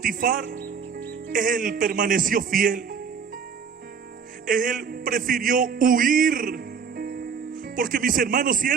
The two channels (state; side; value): quieter; left; 6.3 dB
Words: él permaneció fiel. Él prefirió huir. Porque, mis hermanos, si